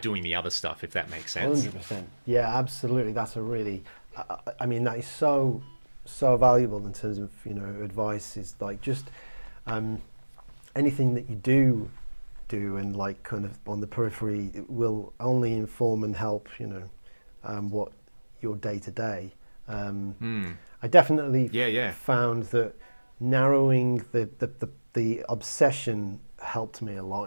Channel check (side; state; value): both; inverted; correlation -1.00